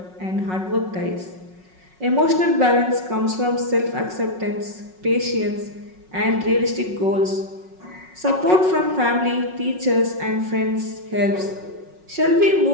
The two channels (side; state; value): left; late; 5.4 ms